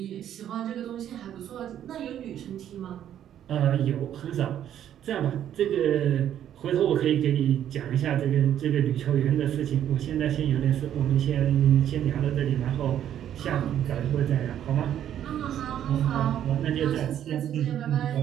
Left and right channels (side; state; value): left; quieter; 10.5 dB